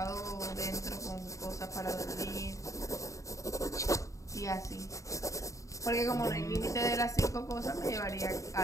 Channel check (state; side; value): late; right; 0.16 ms